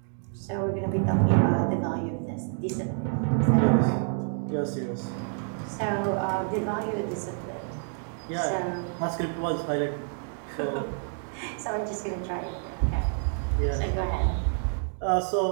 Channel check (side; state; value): left; silent; 59 dB below the other